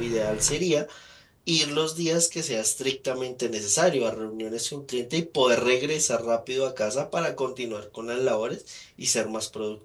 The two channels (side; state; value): both; identical; correlation 1.00